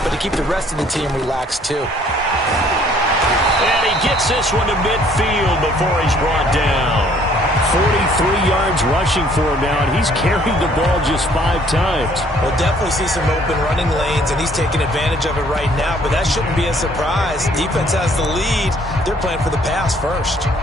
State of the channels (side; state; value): both; normal; correlation 0.60